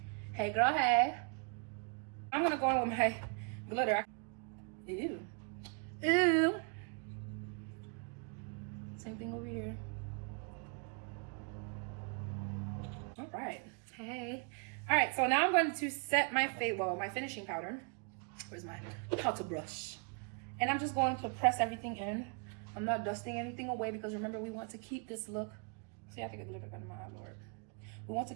Hey, girl, hey. I'm gonna go in with my glitter. Ew. Ew. Same thing over here. All right. Hey. All right, so now I'm going to set my my finishing powder. Where's my powder brush? And I'm just going to press everything in. I'm not dusting anything away because remember, we want to keep this look. See, I think a glitter got in my eye, Lord. We want to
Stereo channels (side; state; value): left; quieter; 39.4 dB